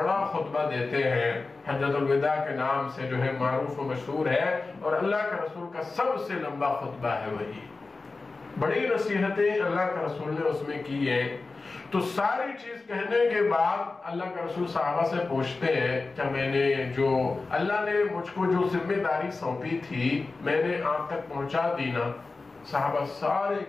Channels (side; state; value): right; quieter; 3.7 dB